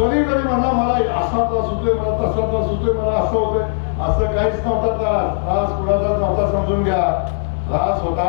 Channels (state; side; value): silent; right; 67 dB below the other